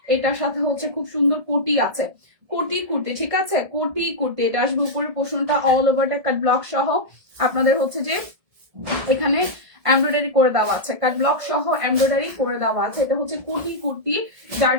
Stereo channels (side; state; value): left; late; 1.7 ms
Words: এটার সাথে হচ্ছে খুব সুন্দর কোটি আছে, কোটি কুর্তি, ঠিক আছে, কোটি কুর্তি। এটা আসবে উপরের পোর্শনটা অল ওভারটা কাট ব্লক সহ আপনাদের হচ্ছে যে এখানে এমব্রয়ডারি করে দেওয়া আছে, কাট ব্লক সহ এমব্রয়ডারি করে দেওয়া আছে। এটা হচ্ছে কোটি কুর্তি, যার